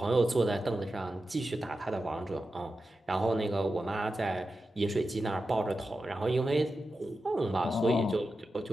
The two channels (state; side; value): normal; both; correlation 0.91